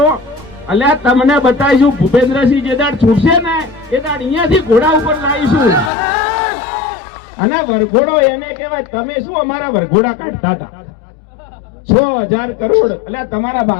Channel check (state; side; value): drops out; right; at 5.9 s